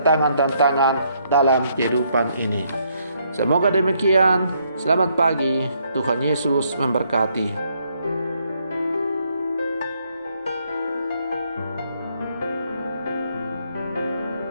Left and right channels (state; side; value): inverted; both; correlation -0.71